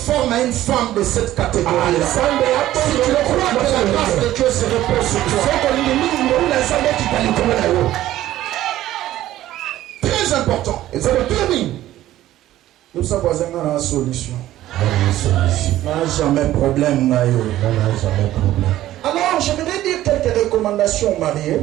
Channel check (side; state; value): left; quieter; 14.2 dB